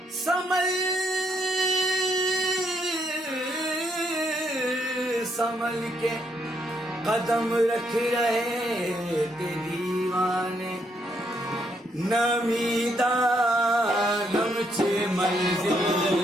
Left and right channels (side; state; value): both; normal; correlation 0.74